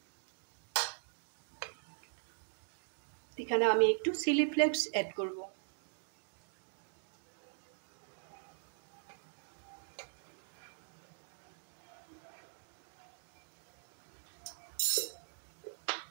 এখানে আমি একটু চিলি ফ্লেক্স অ্যাড করব।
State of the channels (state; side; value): silent; left; digital silence